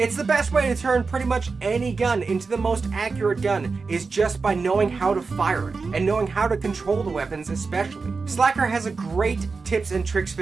the best way to turn pretty much any gun into the most accurate gun, is just by knowing how to fire it and knowing how to control the weapons especially. Slacker has a great tips and tricks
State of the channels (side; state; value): left; quieter; 4.5 dB